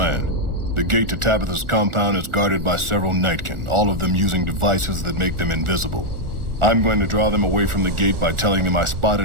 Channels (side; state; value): left; late; 1.4 ms